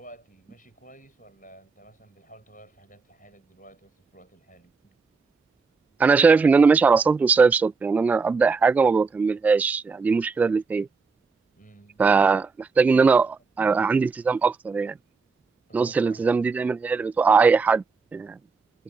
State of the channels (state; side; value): quieter; left; 4.6 dB